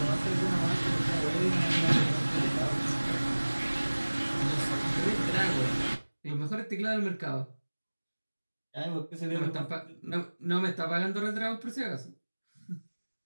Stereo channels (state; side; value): inverted; both; correlation -1.00